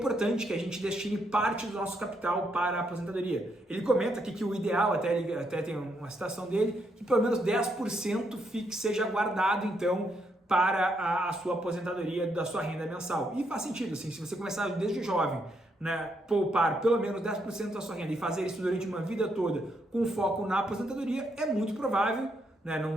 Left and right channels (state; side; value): normal; both; correlation 0.76